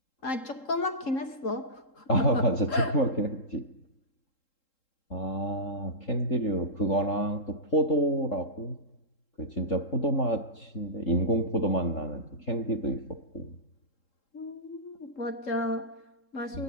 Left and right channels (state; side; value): late; right; 3.7 ms